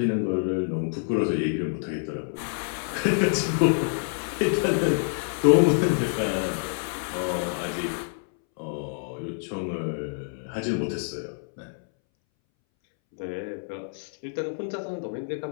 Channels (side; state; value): right; silent; 60 dB below the other